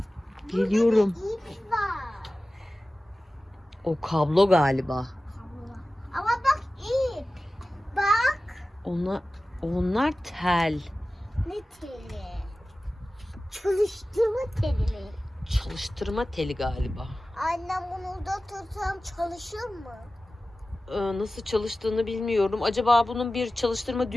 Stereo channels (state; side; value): normal; both; correlation 0.96